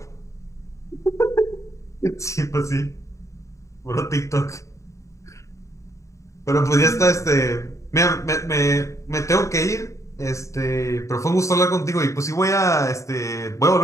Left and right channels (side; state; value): right; late; 0.15 ms